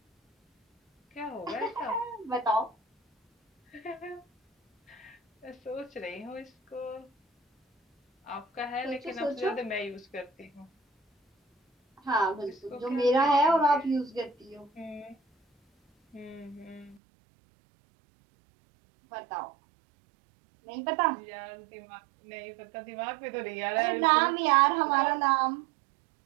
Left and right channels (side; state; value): left; drops out; at 17.0 s